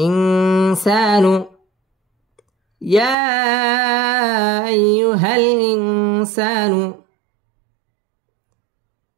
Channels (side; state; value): left; drops out; at 3.2 s